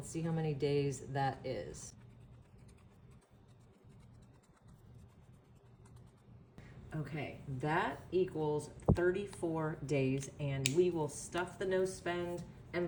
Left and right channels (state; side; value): identical; both; correlation 1.00